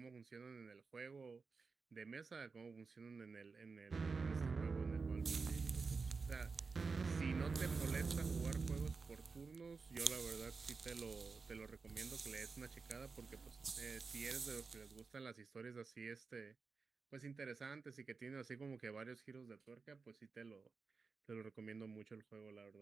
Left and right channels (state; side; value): quieter; left; 4.6 dB